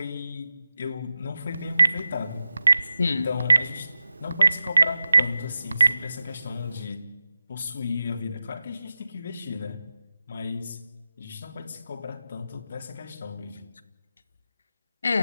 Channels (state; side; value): inverted; both; correlation -0.92